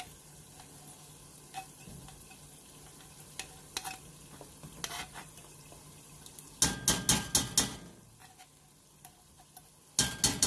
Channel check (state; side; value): identical; both; correlation 1.00